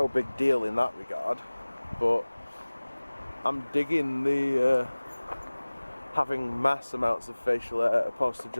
big deal in that regard. But I'm digging the having mass amounts of facial hair opposed to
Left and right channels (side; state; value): both; inverted; correlation -1.00